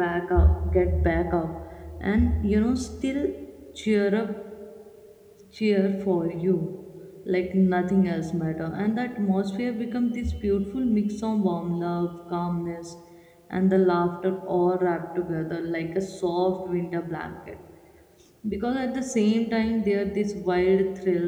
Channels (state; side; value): identical; both; correlation 1.00